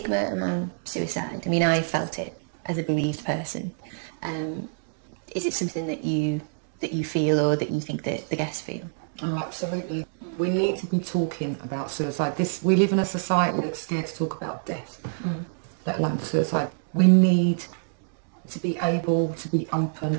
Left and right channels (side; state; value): left; silent; digital silence